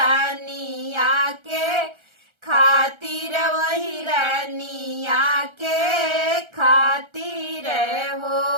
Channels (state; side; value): late; left; 1.3 ms